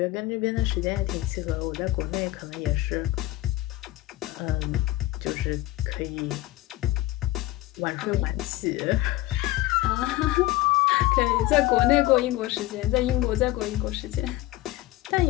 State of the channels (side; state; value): right; quieter; 17.1 dB